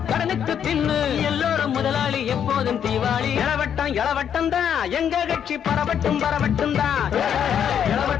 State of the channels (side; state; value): right; quieter; 8.7 dB